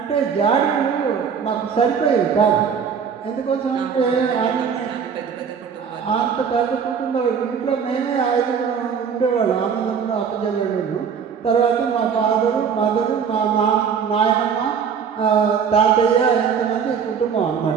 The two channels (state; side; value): quieter; left; 6.9 dB